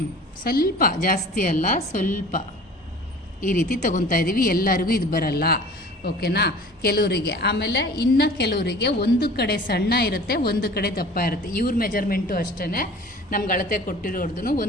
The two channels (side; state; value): both; normal; correlation 0.44